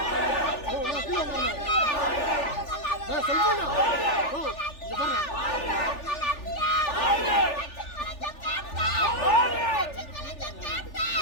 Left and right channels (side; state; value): right; late; 3.4 ms